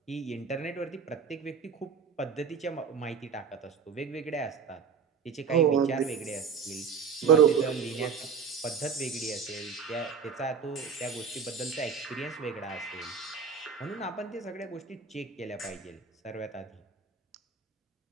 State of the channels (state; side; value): quieter; left; 6.1 dB